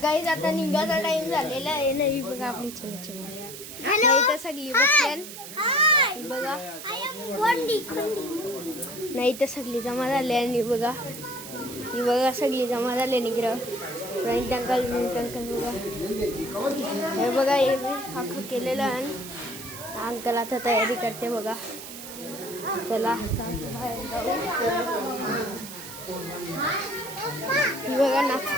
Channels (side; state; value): right; noise; hiss, 12 dB below the sound